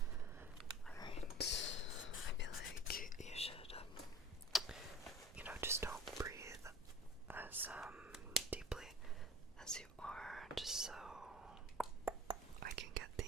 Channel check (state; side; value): normal; both; correlation 0.40